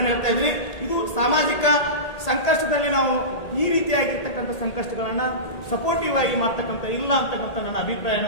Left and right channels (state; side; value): late; right; 1.8 ms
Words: ಹೇಳ್ತಾ ಇದ್ದೀನಿ. ಇದು ಸಾಮಾಜಿಕ ಸಂಕಷ್ಟದಲ್ಲಿ ನಾವು ಈ ರೀತಿಯಾಗಿರ್ತಕ್ಕಂಥ ಸಂಕಷ್ಟಗಳನ್ನ ಸಪೋರ್ಟಿವ್ ಆಗಿ ಮಾಡ್ತಕ್ಕಂಥ ಇಲ್ಲ ಅಂತಕ್ಕಂಥ ನನ್ನ ಅಭಿಪ್ರಾಯನ